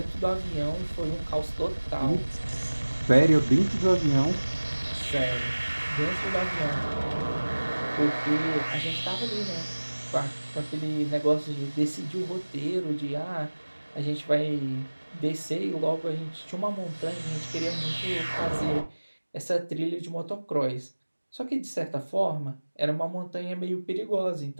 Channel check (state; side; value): inverted; both; correlation -1.00